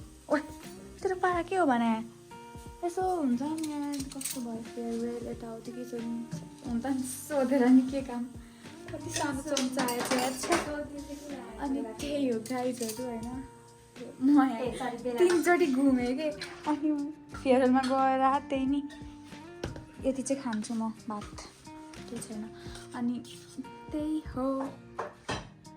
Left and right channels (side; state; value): both; identical; correlation 1.00